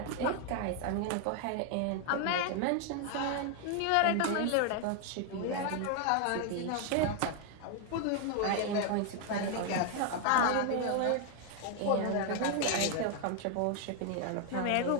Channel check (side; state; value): both; different; correlation 0.00